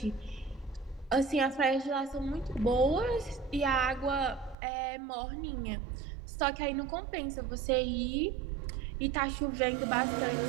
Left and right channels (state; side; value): drops out; left; at 4.5 s